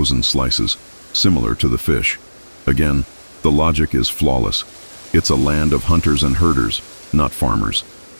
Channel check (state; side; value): inverted; both; correlation -1.00